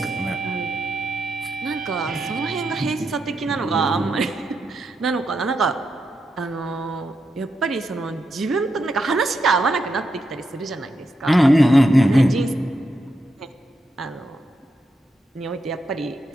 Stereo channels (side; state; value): both; normal; correlation 0.84